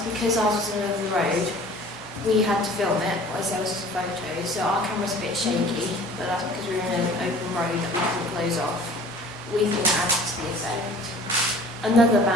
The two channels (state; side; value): normal; both; correlation 0.47